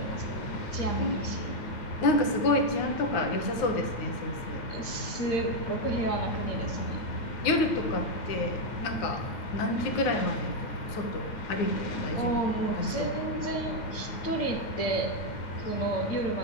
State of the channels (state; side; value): late; right; 9.5 ms